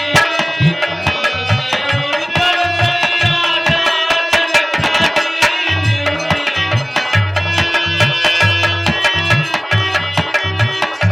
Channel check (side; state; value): both; identical; correlation 1.00